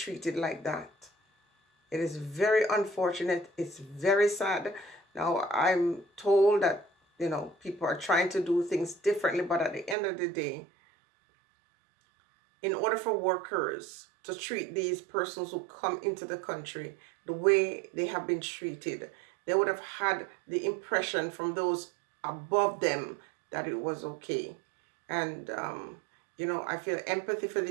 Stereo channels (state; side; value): drops out; left; at 10.0 s